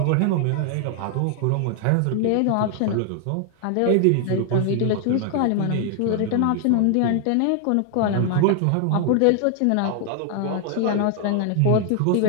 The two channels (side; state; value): both; different; correlation 0.00